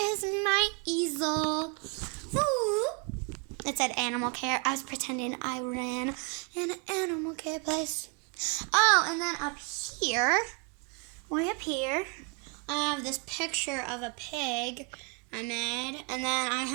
my easel. Ooh. It said animal care. I was pretending I ran an animal care place. Oh, and then up here, way up here, I have this picture of a pig I made. And then I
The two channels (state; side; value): quieter; left; 34.4 dB